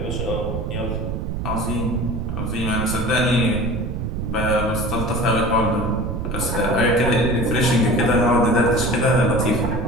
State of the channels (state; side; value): noise; right; rumble, 3 dB below the sound